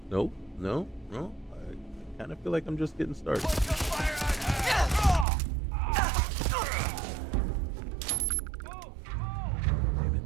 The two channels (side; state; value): left; drops out; at 5.2 s